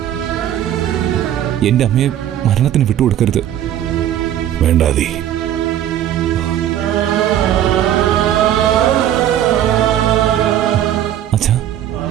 എന്റെ അമ്മയെ മരണത്തിന് വിട്ടുകൊടുക്കരുത്. വേണ്ടാതി. അച്ഛാ,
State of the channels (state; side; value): quieter; left; 11.2 dB